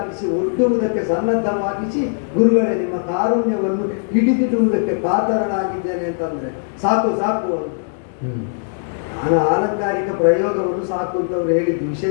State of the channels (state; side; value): silent; right; 66 dB below the other